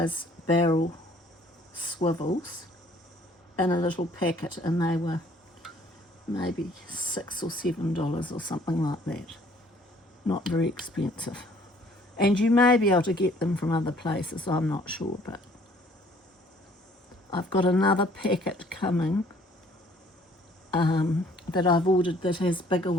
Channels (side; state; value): both; normal; correlation 0.58